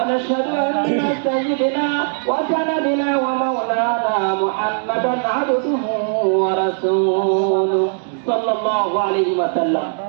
أن سيدنا وسندنا ومولانا محمدا عبده ورسوله صلى الله عليه وسلم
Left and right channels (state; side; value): silent; left; digital silence